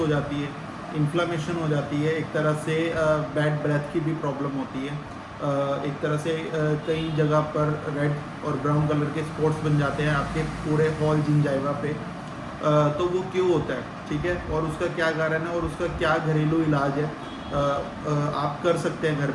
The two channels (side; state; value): both; identical; correlation 1.00